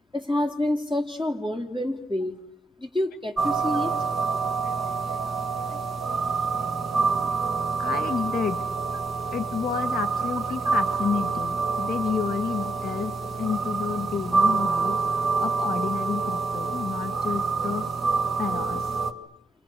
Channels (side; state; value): both; normal; correlation 0.79